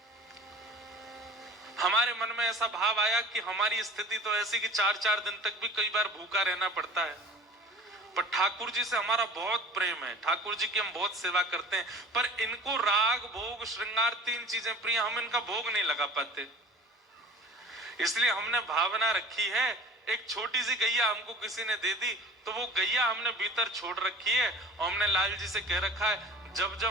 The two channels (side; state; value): both; normal; correlation 0.44